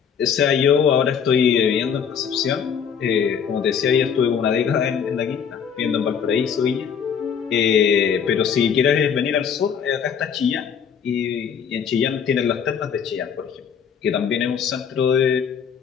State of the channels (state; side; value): quieter; right; 7.3 dB